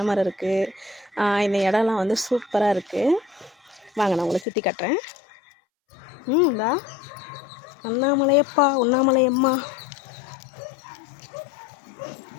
மரம் இருக்குது. இந்த இடம்லாம் வந்து சூப்பராக இருக்குது. வாங்க நான் உங்களை சுற்றி காட்டுறேன். இந்தா அண்ணாமலையப்பா, உண்ணாமலையம்மா.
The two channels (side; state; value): right; drops out; at 4.5 s